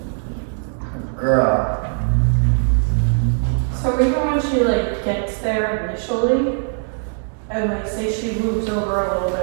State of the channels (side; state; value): left; silent; 66 dB below the other